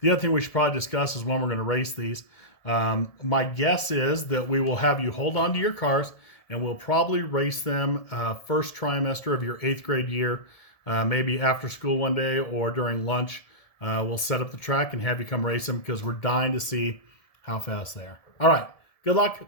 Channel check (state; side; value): late; right; 1.7 ms